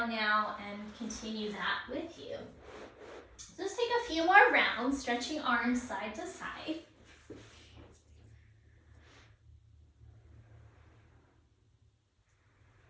now and continue that with you. Just take a few more rounds, stretching arms side to side.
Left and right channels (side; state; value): both; identical; correlation 1.00